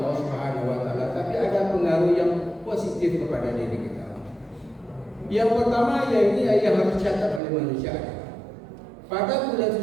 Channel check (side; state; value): left; drops out; at 7.4 s